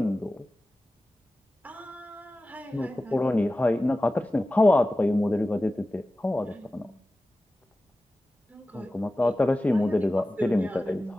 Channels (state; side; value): normal; both; correlation 0.96